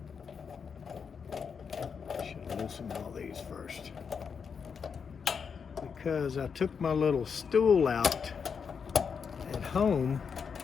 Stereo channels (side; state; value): right; quieter; 6.3 dB